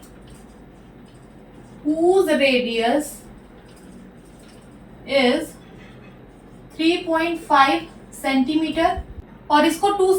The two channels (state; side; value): identical; both; correlation 1.00